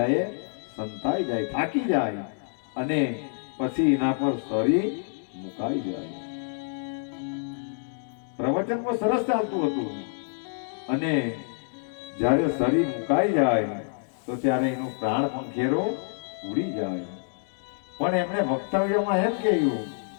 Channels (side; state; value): right; silent; digital silence